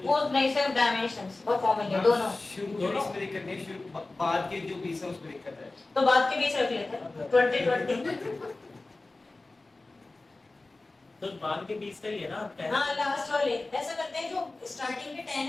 वो नहीं, सिर्फ डायमेंशंस और फॉर्मूले दोनों। शुरू के बीच में दिक्कत नहीं, शुरू बाद के जो बीच है उसमें दिक्कत है। तो बाद के बीच रख लेते हैं 20 तो बाद के 20 का ही है ना आपका? हाँ लास्ट वाले ऐसा करते हैं, जो स्टार्टिंग के 10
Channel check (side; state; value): right; quieter; 3.2 dB